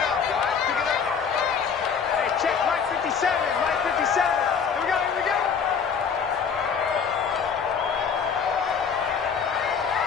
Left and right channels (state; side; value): quieter; right; 6.5 dB